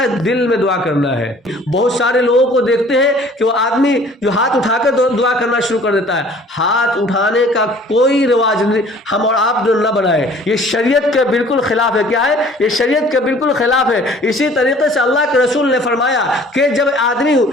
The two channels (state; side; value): normal; both; correlation 0.52